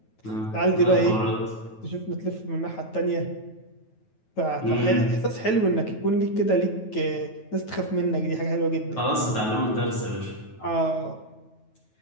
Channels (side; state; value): right; late; 9.3 ms